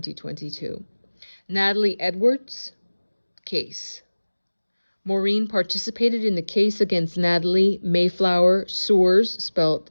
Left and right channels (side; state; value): both; inverted; correlation -1.00